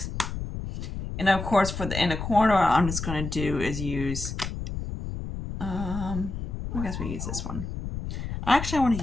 And of course, for the inner corner, I'm just going to do is use, I guess we use this one. Actually, I want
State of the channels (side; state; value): left; noise; rumble, 6 dB below the sound